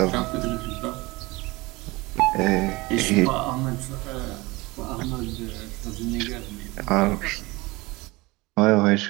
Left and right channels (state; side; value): quieter; left; 22.6 dB